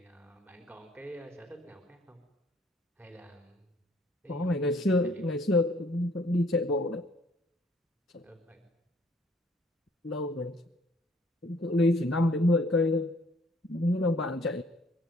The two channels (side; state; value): both; normal; correlation 0.61